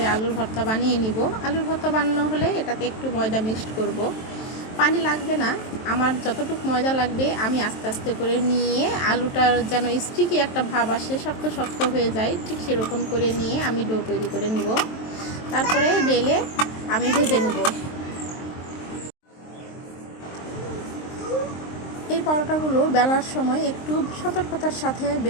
আলুর ভর্তা বানিয়ে নিব। আলুর ভর্তা বানানো হলে এটাতে একটু ময়দা মিক্সড করব, পানি লাগবে না। আমার যতটুকু ময়দা লাগবে আমি আস্তে আস্তে করে নিয়ে আলুটার যেন স্টিকি একটা ভাব আসে, শক্ত শক্ত হয়ে যায়, ঠিক সেরকম করে নিয়ে আমি ডো তৈরি করে নিব। তারপরে বেলে আমি ভেজে নেব। এই পরোটাগুলো বেলার সময় একটু সতর্কতার সাথে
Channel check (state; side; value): late; right; 23 ms